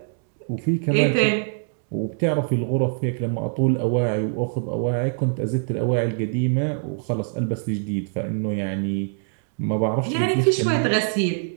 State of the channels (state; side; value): silent; left; digital silence